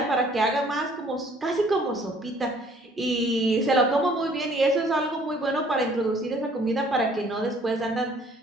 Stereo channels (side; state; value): both; normal; correlation 0.58